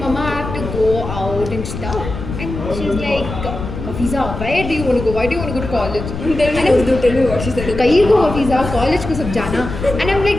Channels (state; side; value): noise; left; rumble, 7 dB below the sound